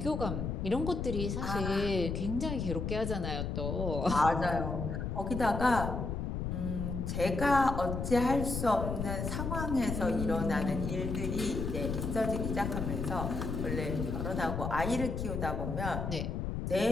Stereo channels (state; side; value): noise; left; rumble, 3 dB below the sound